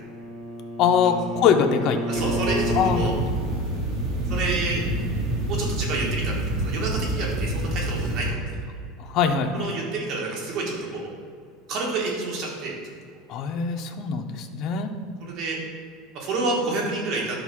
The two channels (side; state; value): both; normal; correlation 0.31